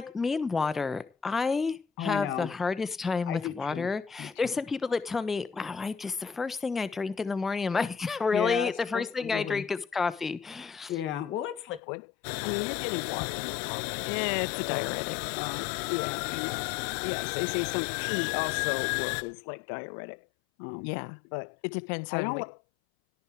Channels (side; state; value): right; drops out; at 11.8 s